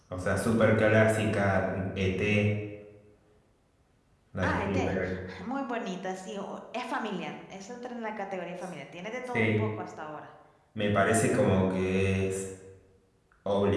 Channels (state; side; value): identical; both; correlation 1.00